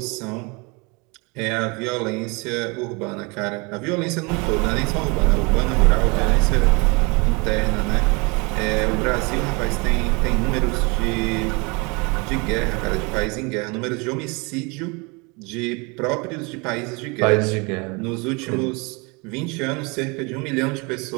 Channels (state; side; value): quieter; left; 28.9 dB